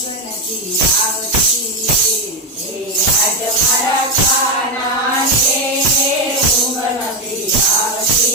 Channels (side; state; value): both; normal; correlation 0.08